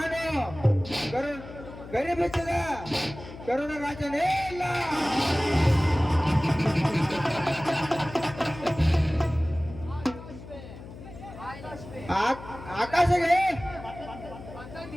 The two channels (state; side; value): noise; left; hum, 15 dB below the sound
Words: ಗರಿಬಿಚ್ಚದ ಕರುಣ ರಾಜನೇ ಇಲ್ಲ. ಆಕಾಶಗೆ